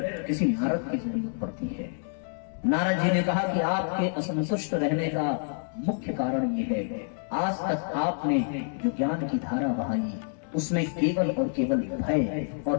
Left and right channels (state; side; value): silent; right; digital silence